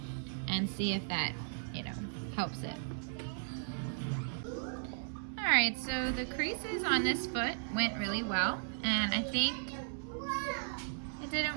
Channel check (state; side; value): silent; left; digital silence